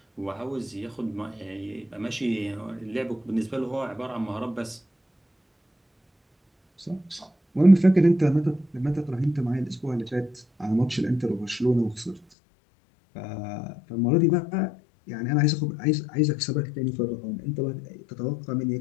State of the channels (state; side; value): drops out; right; at 12.2 s